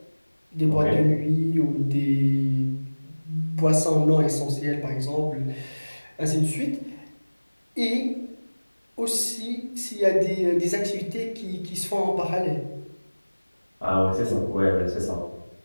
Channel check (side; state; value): both; inverted; correlation -1.00